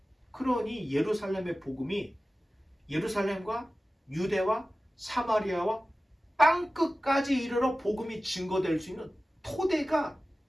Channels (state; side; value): normal; both; correlation 0.96